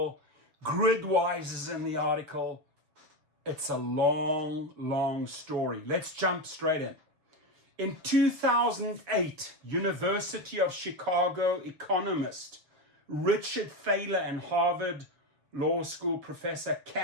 Gridwise is in the article. It's a long, long story. Let's jump straight in. In 2008, University of Chicago economist Richard Thaler and Harvard Law School professor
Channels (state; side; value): late; left; 6.3 ms